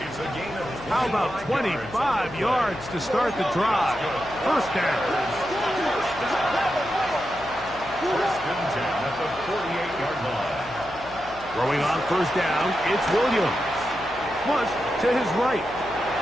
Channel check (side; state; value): left; noise; hum, 18 dB below the sound